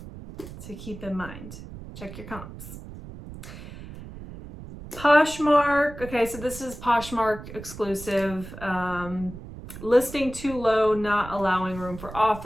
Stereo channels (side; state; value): right; noise; rumble, 13 dB below the sound